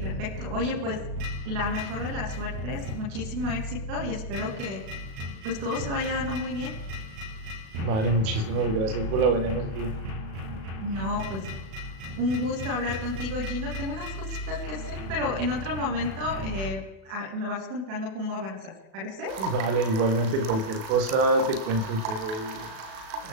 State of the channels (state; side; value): late; left; 36 ms